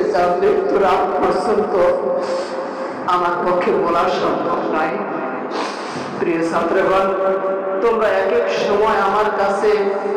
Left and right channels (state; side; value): identical; both; correlation 1.00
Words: যা মৃত্যুর আগ পর্যন্ত আমার পক্ষে বলা সম্ভব নয়। প্রিয় ছাত্রগণ, তোমরা এক এক সময় আমার কাছে